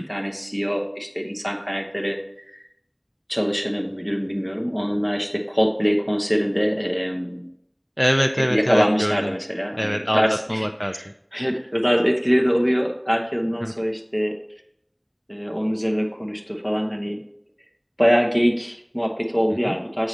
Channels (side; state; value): both; identical; correlation 1.00